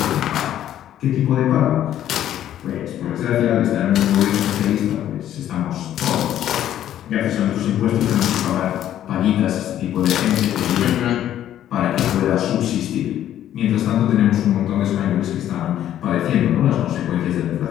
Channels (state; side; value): quieter; right; 11.5 dB